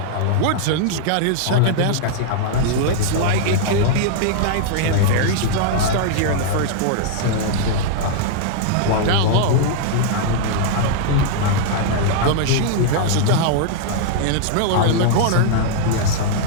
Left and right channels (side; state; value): both; different; correlation -0.01